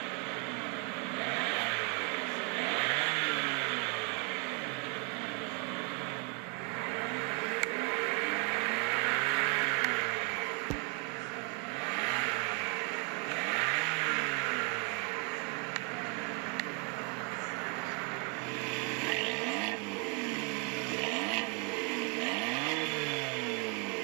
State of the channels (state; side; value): quieter; left; 34.6 dB